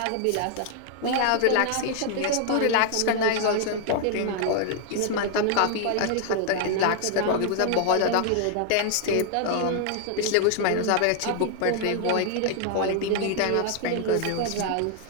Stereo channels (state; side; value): different; both; correlation 0.00